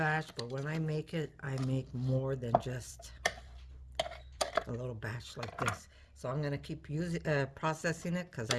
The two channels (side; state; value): both; identical; correlation 1.00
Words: but when I make it, I make more than just a little batch like this. So I'm gonna keep using, processing it because